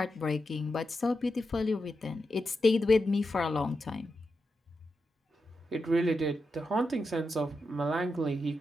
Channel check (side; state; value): both; normal; correlation 0.87